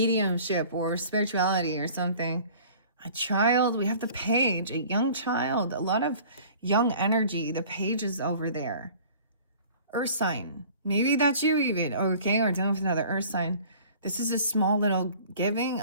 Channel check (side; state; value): both; inverted; correlation -0.47